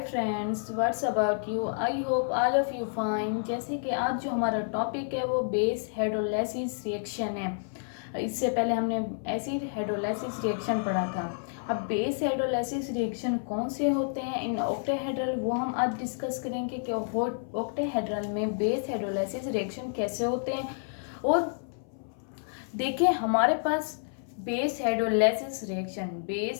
friends, what's about you. I hope all of you fine. जैसे कि आज जो हमारा टॉपिक है वो बेस हाइड्रोलाइसिस रिएक्शन है। इससे पहले हमने एसिड हाइड्रोलाइसिस रिएक्शन पढ़ा था। अब बेस हाइड्रोलाइसिस रिएक्शन कौन से होते हैं इन ऑक्टेहेड्रल, वो हम आज डिस्कस करेंगे कि ऑक्टेहेड्रल में बेस हाइड्रोलाइसिस रिएक्शन कैसे होते हैं। और देखिए हमारे पास बेस हाइड्रोलाइसिस रिएक्शन,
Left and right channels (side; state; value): right; silent; 58 dB below the other